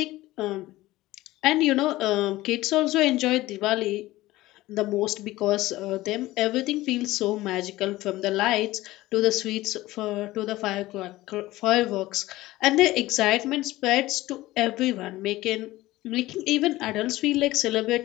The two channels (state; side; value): quieter; right; 17.5 dB